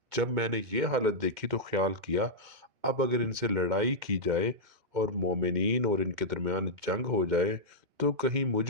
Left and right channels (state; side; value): late; left; 2.2 ms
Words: جب میں نے یہ حالت دیکھی تو خیال کیا، اب اگر ان سے لڑائی کی جائے اور مومنین اور ان کے درمیان جنگ ہو جائے تو کہیں